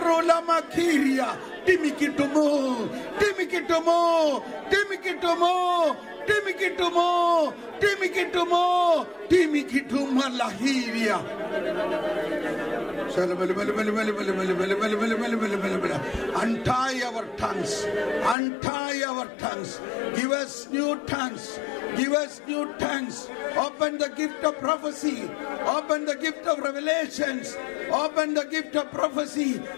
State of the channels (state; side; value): drops out; right; at 18.4 s